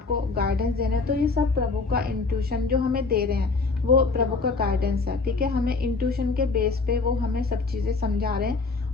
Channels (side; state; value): right; quieter; 4.0 dB